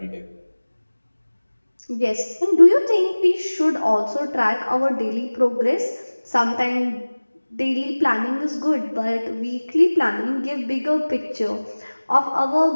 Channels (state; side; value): inverted; both; correlation -1.00